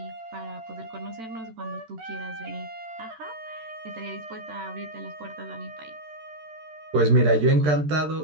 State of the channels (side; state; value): left; late; 13 ms